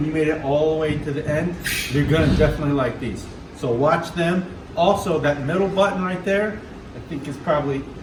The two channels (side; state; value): both; identical; correlation 1.00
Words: you made it all the way to the end, you're going to definitely like these. So watch them. Also, that middle button right there, I think is probably,